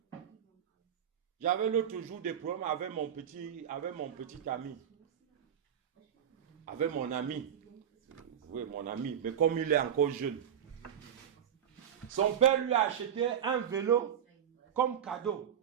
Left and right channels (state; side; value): quieter; left; 9.1 dB